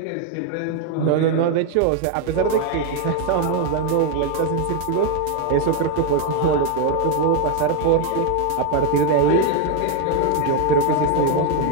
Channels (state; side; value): different; both; correlation 0.01